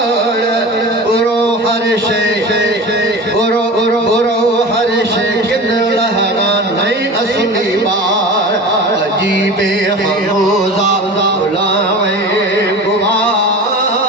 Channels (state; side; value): normal; both; correlation 0.34